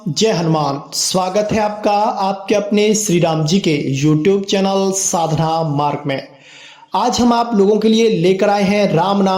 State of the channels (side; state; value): both; identical; correlation 1.00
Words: जय हनुमान। स्वागत है आपका आपके अपने श्री राम जी के YouTube चैनल साधना मार्ग में। आज हम आप लोगों के लिए लेकर आए हैं राम